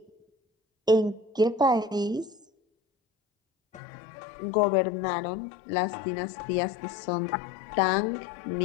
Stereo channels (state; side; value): drops out; right; at 3.8 s